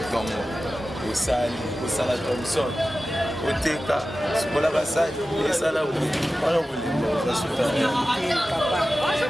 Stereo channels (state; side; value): normal; both; correlation 0.95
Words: osala Thompson oteka sokola basali esala wala bolingo basuta